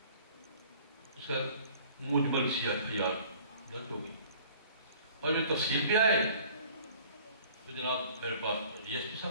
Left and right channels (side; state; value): both; inverted; correlation -0.51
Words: اس کا مجمل سی FIR درج ہوگی. اور جو تفصیل پہ آئے تو جناب میرے پاس DSP